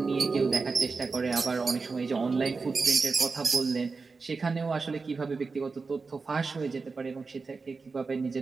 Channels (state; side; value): quieter; left; 4.4 dB